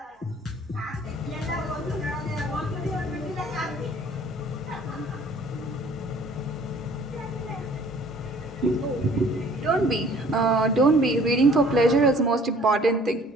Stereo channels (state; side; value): normal; both; correlation 0.54